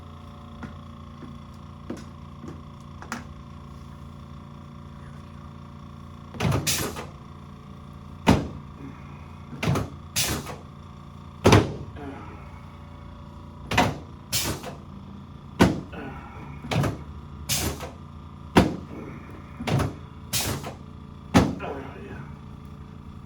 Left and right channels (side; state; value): both; identical; correlation 1.00